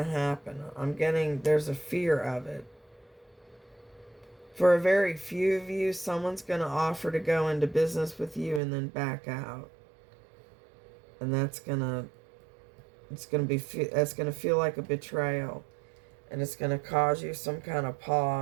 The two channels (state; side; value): drops out; left; at 8.6 s